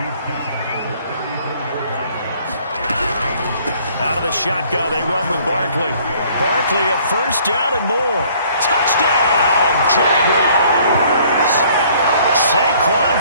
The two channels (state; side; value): inverted; both; correlation -0.59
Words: Out of the shotgun, they run with Barkley. Barkley, a first down and more. Touchdown, Jaguars! Saquon